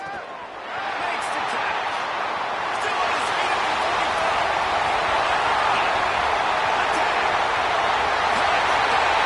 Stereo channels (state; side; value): identical; both; correlation 1.00